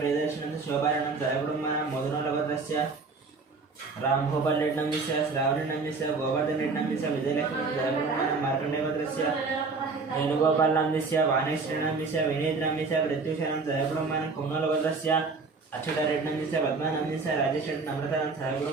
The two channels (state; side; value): quieter; left; 4.3 dB